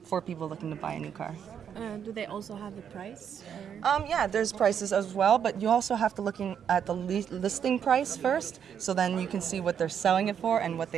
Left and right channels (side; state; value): left; quieter; 8.2 dB